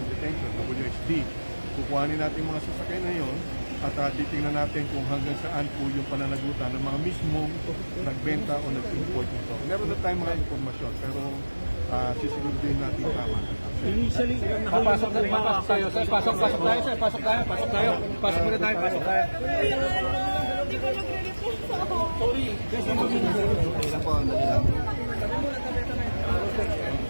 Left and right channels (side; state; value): both; inverted; correlation -1.00